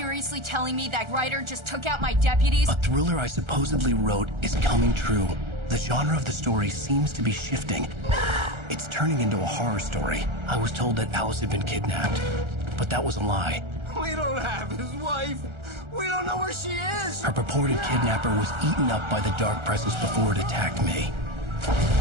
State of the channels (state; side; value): late; left; 1.4 ms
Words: telling me that writer just took out my deputies? A thriller I supposedly wrote is coming true. The genre of the story seems to be shifting. It's turning into a horror story. I was told that Alice had been kidnapped, but that was a lie. We don't have his wife. We don't know where she is. Her purported kidnapper was eaten up by the dark presence before it attacked me.